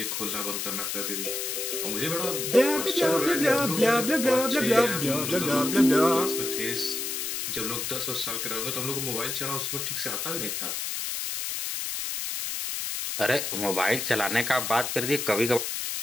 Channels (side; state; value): left; noise; hiss, 3 dB below the sound